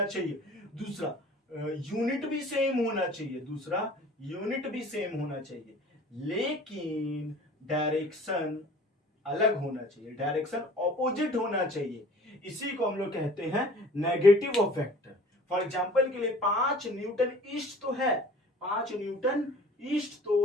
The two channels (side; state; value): both; normal; correlation 0.48